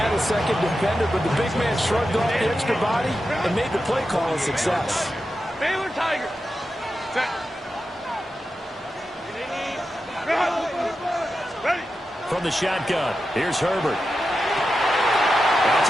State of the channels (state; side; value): normal; both; correlation 0.90